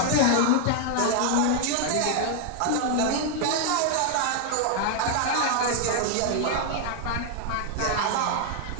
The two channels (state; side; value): different; both; correlation 0.00